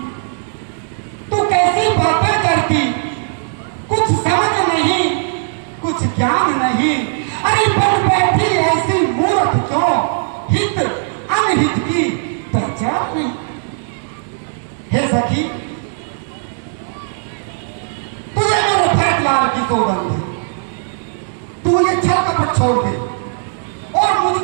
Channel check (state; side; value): silent; left; digital silence